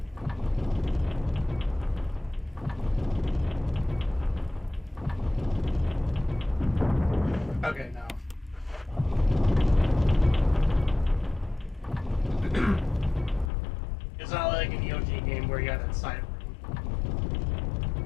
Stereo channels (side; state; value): right; drops out; at 13.5 s